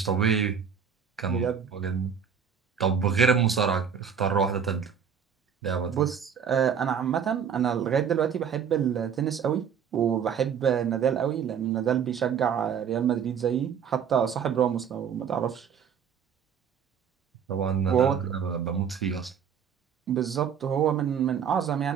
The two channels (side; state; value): left; quieter; 7.6 dB